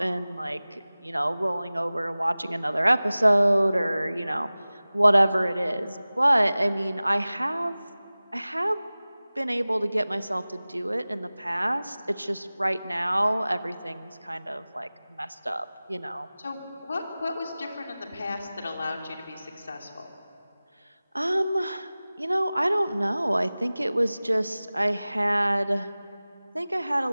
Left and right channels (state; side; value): inverted; both; correlation -0.98